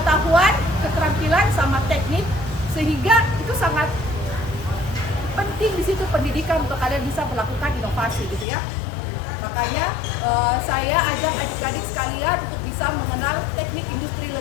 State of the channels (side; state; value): right; drops out; at 8.5 s